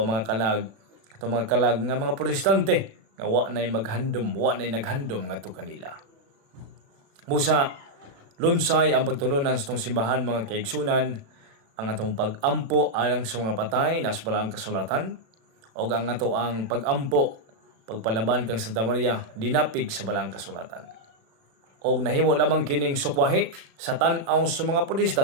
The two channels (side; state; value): left; late; 36 ms